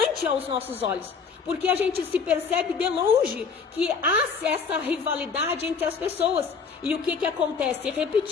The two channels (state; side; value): quieter; right; 5.5 dB